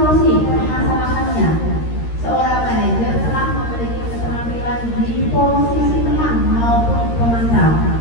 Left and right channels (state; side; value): late; right; 13 ms